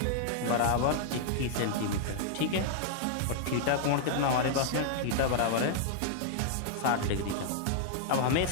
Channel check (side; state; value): both; different; correlation -0.01